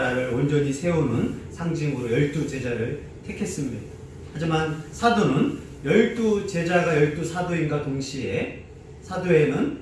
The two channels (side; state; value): both; identical; correlation 1.00